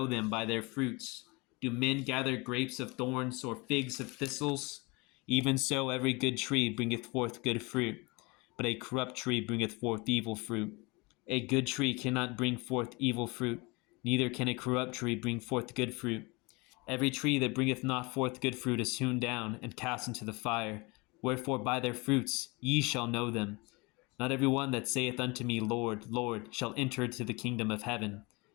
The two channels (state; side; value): quieter; right; 26.5 dB